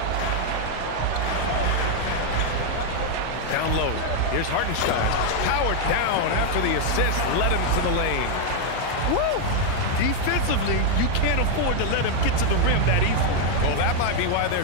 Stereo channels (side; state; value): both; different; correlation 0.00